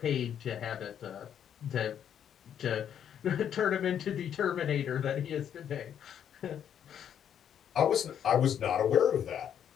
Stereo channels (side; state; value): right; quieter; 9.1 dB